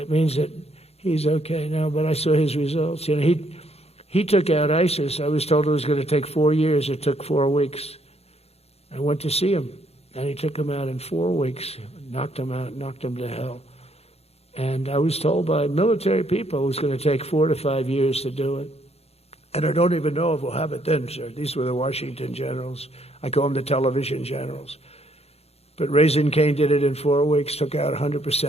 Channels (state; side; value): late; right; 0.30 ms